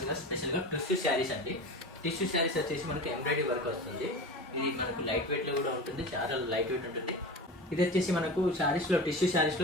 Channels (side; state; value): both; normal; correlation 0.30